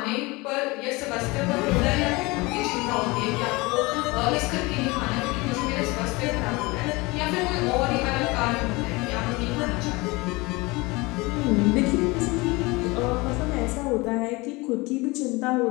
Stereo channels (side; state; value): right; quieter; 23.9 dB